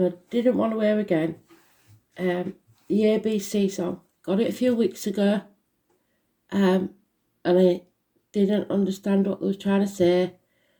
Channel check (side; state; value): both; identical; correlation 1.00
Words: I didn't want to hear again. The ABC song. Got it a few weeks ago. And I didn't understand what they were trying to say.